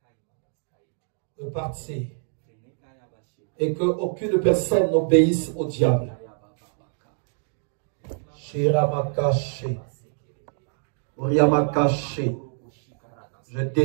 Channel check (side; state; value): left; silent; 61 dB below the other